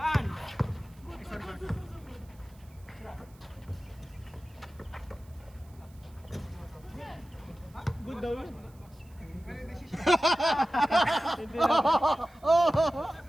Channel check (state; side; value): noise; right; hiss, 29 dB below the sound